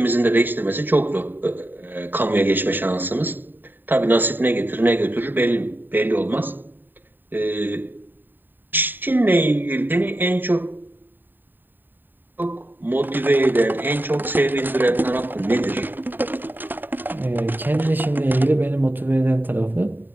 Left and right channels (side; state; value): left; late; 0.092 ms